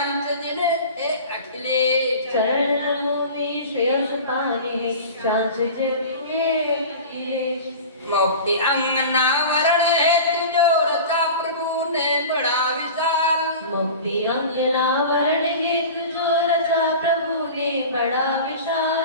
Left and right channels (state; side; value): inverted; both; correlation -0.35